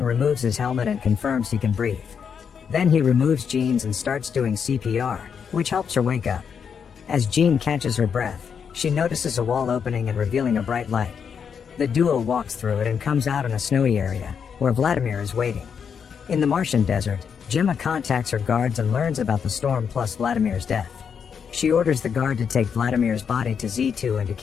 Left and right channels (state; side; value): quieter; right; 6.9 dB